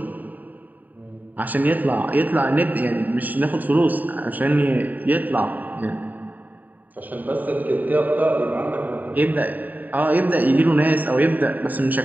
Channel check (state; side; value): late; left; 0.084 ms